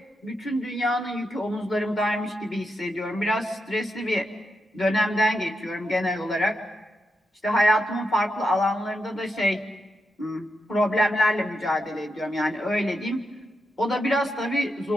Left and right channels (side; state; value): both; normal; correlation 0.85